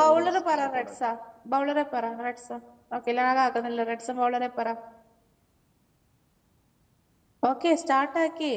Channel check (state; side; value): identical; both; correlation 1.00